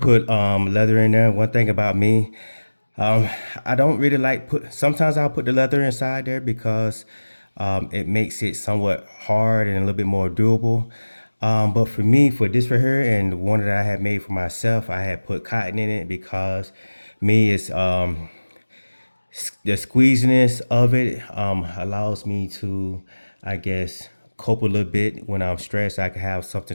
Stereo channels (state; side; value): inverted; both; correlation -1.00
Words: leather in there. One thing about me, um, I don't really like put. Sometimes I'll put the leather inside there because it makes it somewhat hard and a little bit more durable. But for me, for this right here and one that I had made for myself, I had put cotton in it because me is the squeeziness of it allows me to, I guess, cope a little bit when I'm stressed. I can have